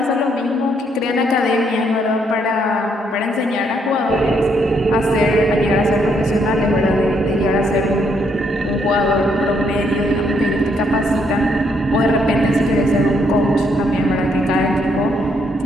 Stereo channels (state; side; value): normal; both; correlation 0.73